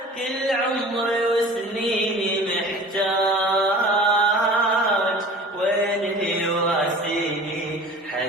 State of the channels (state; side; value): normal; both; correlation 0.42